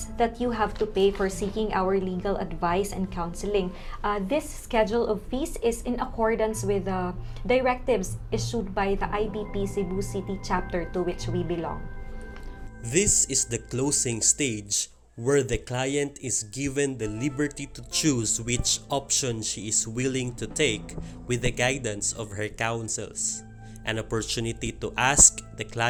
that you have to pay for seeking our legal advice and counseling. This schedule of fees is in accordance with the directives issued by the IBP Cebu City chapter to which we belong. This is the closing stage where the client is given the liberty to choose which option she is willing to take with the guidance of her counsels. An opportunity to ask the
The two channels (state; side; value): identical; both; correlation 1.00